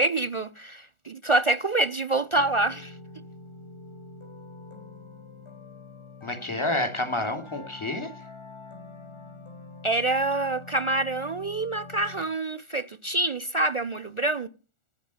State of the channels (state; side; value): late; right; 1.4 ms